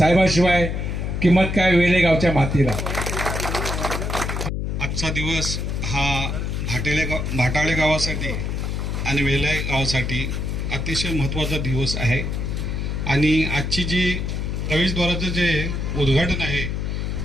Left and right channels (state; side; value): noise; left; hum, 2 dB below the sound